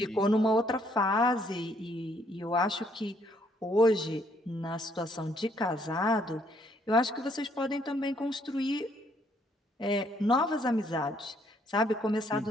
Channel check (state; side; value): normal; both; correlation 0.68